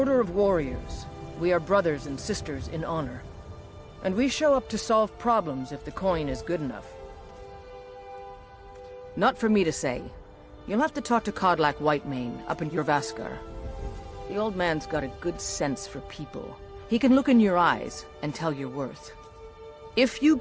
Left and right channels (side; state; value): both; identical; correlation 1.00